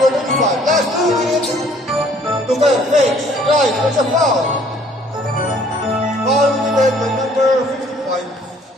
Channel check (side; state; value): both; normal; correlation 0.59